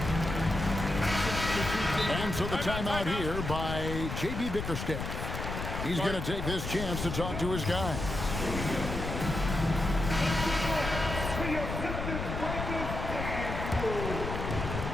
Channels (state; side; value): noise; left; rumble, 4 dB below the sound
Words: And so the timeout here by J.B. Bickerstaff. He's going to take this chance to talk to his guys.